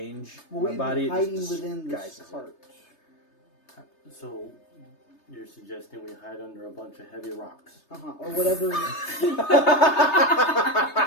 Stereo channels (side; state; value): right; late; 3.3 ms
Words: Well, my we've body. been It hiding just within this disguises it. cart. So, you're suggesting we hide under a bunch of heavy rocks? Or whatever.